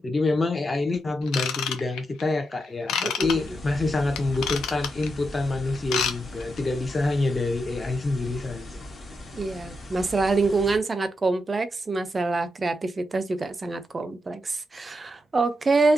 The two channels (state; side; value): normal; both; correlation 0.84